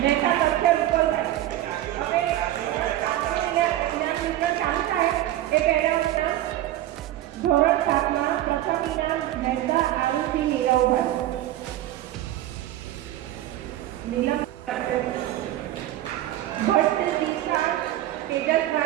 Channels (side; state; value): left; quieter; 14.0 dB